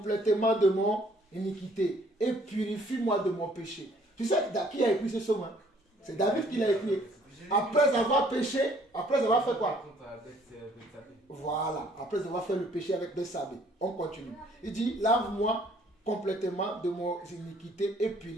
de mon iniquité et purifie-moi de mon péché. Tu sais qui a écrit ce psaume, hein? C'est David qui l'a écrit. Après avoir péché, après avoir fait quoi? Voilà, après avoir fait le péché avec Bethsabée. On continue. Il dit: lave-moi complètement de mon iniquité et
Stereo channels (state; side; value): normal; both; correlation 0.60